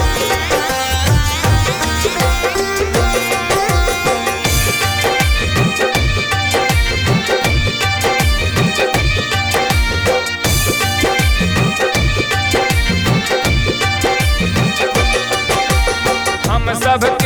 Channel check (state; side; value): identical; both; correlation 1.00